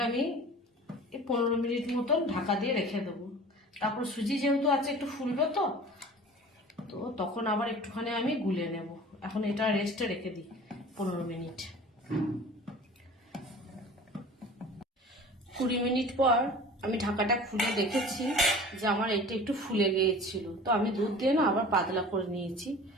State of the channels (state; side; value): normal; both; correlation 0.41